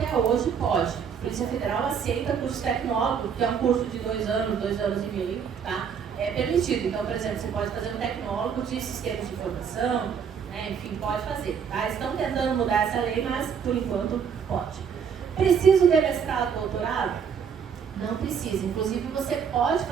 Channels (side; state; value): left; quieter; 7.1 dB